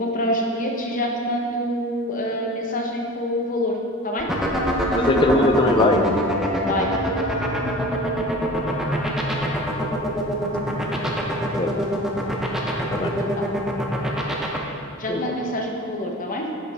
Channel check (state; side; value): normal; both; correlation 0.39